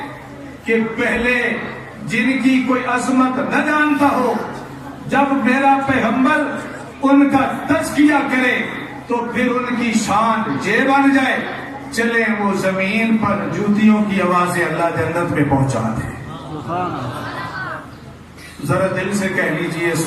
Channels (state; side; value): identical; both; correlation 1.00